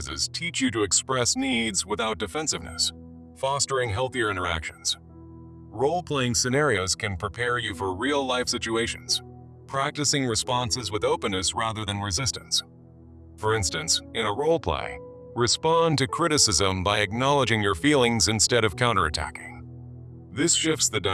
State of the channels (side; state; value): both; identical; correlation 1.00